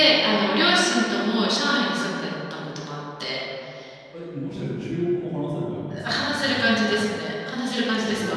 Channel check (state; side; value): identical; both; correlation 1.00